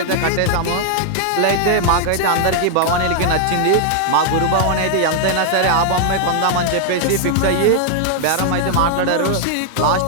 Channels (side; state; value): both; different; correlation -0.01